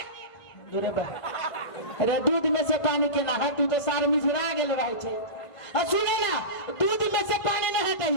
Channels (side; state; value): right; late; 1.5 ms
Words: दूरे बा अरे दूध में से पानी के ना हटू तो सार मिझरा गेल रहे छे आ सुने ना दूध में से पानी न